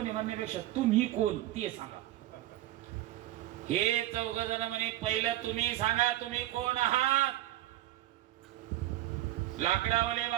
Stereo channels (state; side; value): quieter; left; 14.7 dB